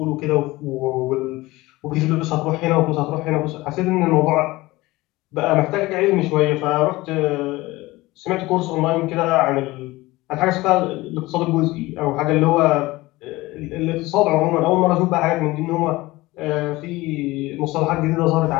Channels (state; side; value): quieter; right; 19.9 dB